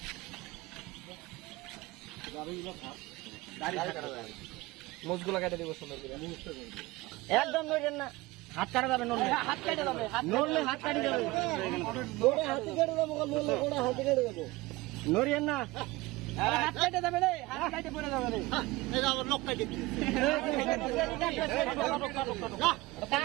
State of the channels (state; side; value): quieter; left; 20.6 dB